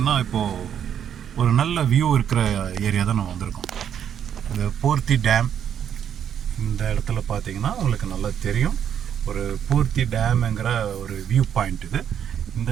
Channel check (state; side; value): quieter; left; 8.9 dB